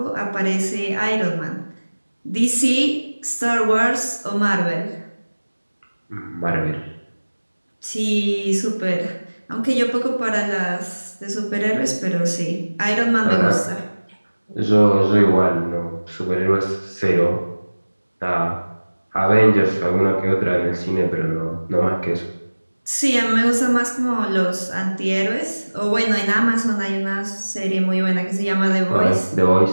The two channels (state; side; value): inverted; both; correlation -1.00